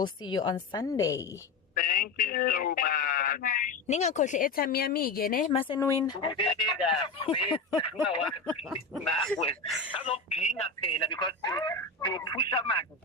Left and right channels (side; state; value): right; quieter; 3.9 dB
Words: see you on Sunday. Thank you so much. Ningakhohle airtime yami ke ne masenwin.